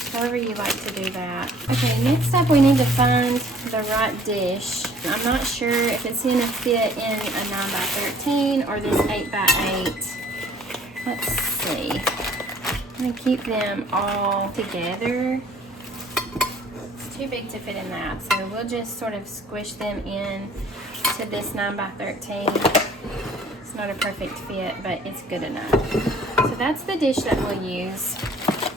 however you like to do that. Okay, next up we need to find the right dish. I'm not sure if it's going to fit in a 9x13 or this 8x8. Let's see. I'm going to keep them all together. It's too big to fit in that, so we'll just sort of squish them in to this 9x13. It's not a perfect fit, but it's good enough. So that's the dish that we'll use.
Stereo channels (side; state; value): both; normal; correlation 0.55